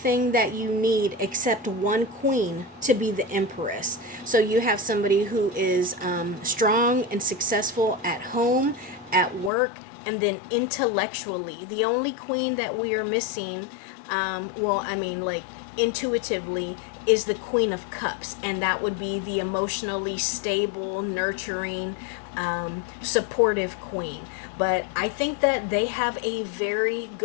that you need except one queen to be the Empress. So you have somebody who is strong and successful at home, at work, and then intellectually. The only queen that we are missing, like intuitively, is the Queen of Cups, and that would be the emotionally stable, nurturing, supportive queen. But I think that they have a very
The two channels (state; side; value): drops out; right; at 9.5 s